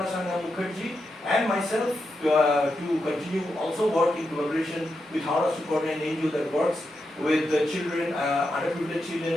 Sangha Mukherjee and myself to continue also work in collaboration with Howrah Suparna, an NGO that works with the children, underprivileged children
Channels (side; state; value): both; normal; correlation 0.86